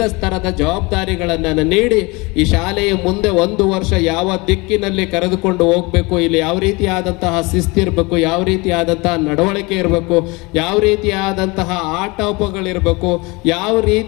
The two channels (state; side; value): quieter; right; 25.6 dB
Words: ಸ್ತರದ ಜವಾಬ್ದಾರಿಗಳನ್ನು ನೀಡಿ ಈ ಶಾಲೆಯ ಮುಂದೆ ಒಂದು ವರ್ಷ ಯಾವ ದಿಕ್ಕಿನಲ್ಲಿ ಕರೆದುಕೊಂಡು ಹೋಗಬೇಕು, ಇಲ್ಲಿ ಯಾವ ರೀತಿಯಾದಂತಹ ಶಿಸ್ತಿರಬೇಕು, ಯಾವ ರೀತಿಯಾದಂತಹ ನಡವಳಿಕೆ ಇರಬೇಕು, ಯಾವ ರೀತಿಯಾದಂತಹ ಆಟೋಪಗಳಿರಬೇಕು, ಯಾವ